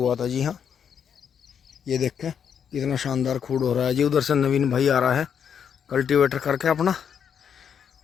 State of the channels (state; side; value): quieter; right; 7.8 dB